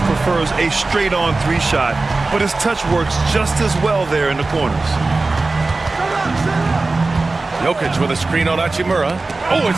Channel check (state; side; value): quieter; left; 3.5 dB